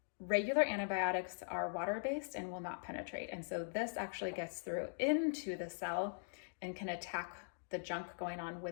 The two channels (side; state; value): right; silent; digital silence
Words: regular antibiotics are water-based and will not penetrate. And so this actually gets through into the cell and can attack the junk going on